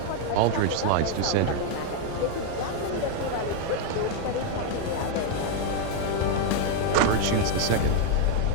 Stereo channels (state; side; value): different; both; correlation 0.00